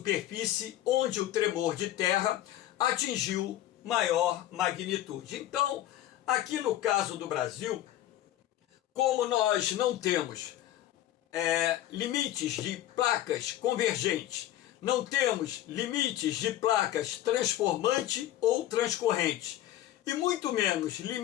onde o tremor de terra atingiu maior magnitude. Então, aqui no caso do Brasil, como nós não temos limites de placas convergentes, não temos limites de placas transformante ou transcorrente, e muito menos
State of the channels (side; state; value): right; quieter; 13.3 dB